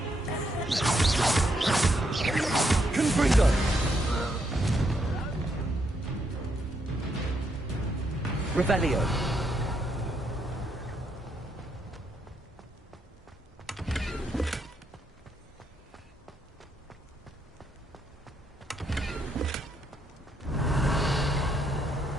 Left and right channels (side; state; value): both; normal; correlation 0.77